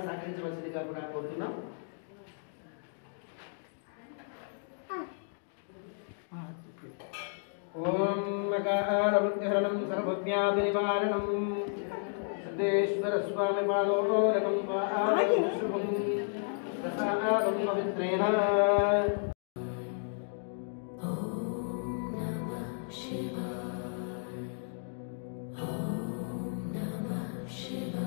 సహకరించవలసిందిగా కూడా కోరుతున్నాం. ఓం మకాళముద్యహరణం సర్వజ్ఞాతినివారణం సిద్ధేశ్వర స్వామి పాదోదకం శుభం ప్రసాదం పవిత్రేణ.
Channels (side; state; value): right; silent; digital silence